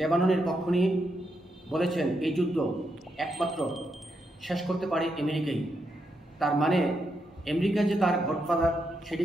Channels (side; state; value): both; normal; correlation 0.82